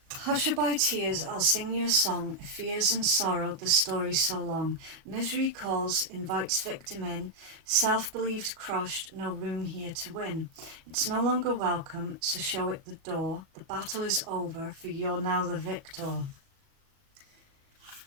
Hushaby tears, I'll sing you a song, fears and sorrow, the story so long. Misery calls, invites victim in, self-believed crushed, no room here to win. It's no longer welcome, so show it the door. The battle is over, for you're now the victor.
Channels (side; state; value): left; late; 37 ms